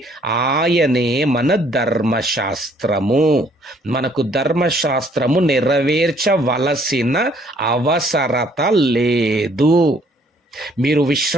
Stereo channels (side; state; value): both; normal; correlation 0.63